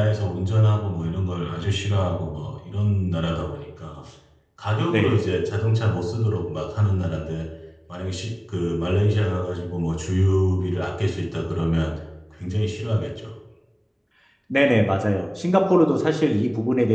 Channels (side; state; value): both; identical; correlation 1.00